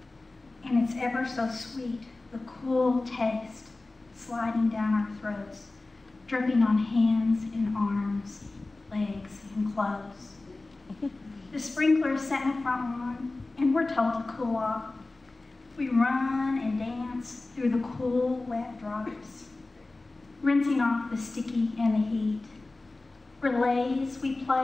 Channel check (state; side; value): quieter; right; 3.2 dB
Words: And it's ever so sweet, the cool taste sliding down our throats, dripping on hands and arms, legs and clothes. The sprinklers set in the front lawn, and we're told to cool off. We run and dance through the cool, wet drops, rinsing off the sticky and the heat. Relays we